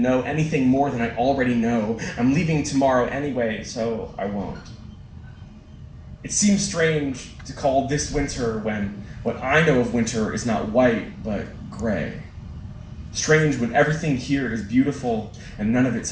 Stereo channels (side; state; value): both; identical; correlation 1.00